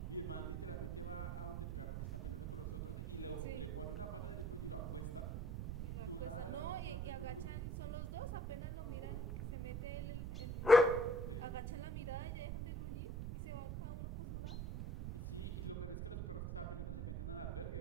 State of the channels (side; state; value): right; noise; rumble, 2 dB below the sound